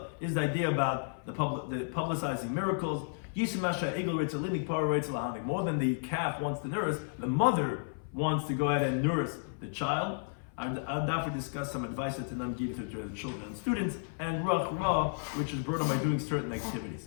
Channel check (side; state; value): right; silent; 56 dB below the other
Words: is the idea about the publicizing miracles. Yishimasha Egel Ritzel Linik Par Ritzel Lahanik. More than the calf wants to nurse, the mother wants to go ahead and nurse the child. And Daf will discuss some advice that Tanam give to the children and students, and Ruach Ra, which is brought on by doing certain activities.